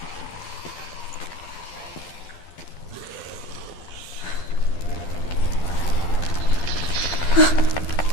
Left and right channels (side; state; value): right; late; 12 ms